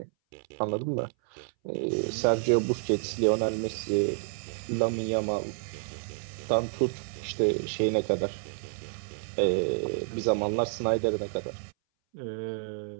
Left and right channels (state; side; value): silent; left; 58 dB below the other